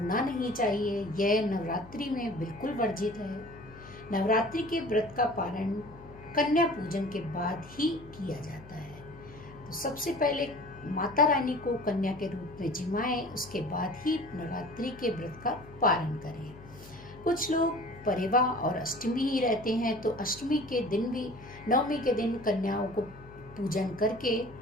नहीं चाहिए, यह नवरात्रि में बिल्कुल वर्जित है। नवरात्रि के व्रत का पारण कन्या पूजन के बाद ही किया जाता है। तो सबसे पहले माता रानी को कन्या के रूप में जिमाएं, उसके बाद ही नवरात्रि के व्रत का पारण करें। कुछ लोग परिवा और अष्टमी ही रहते हैं, तो अष्टमी के दिन भी, नवमी के दिन कन्याओं को पूजन करके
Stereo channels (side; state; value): left; noise; hum, 19 dB below the sound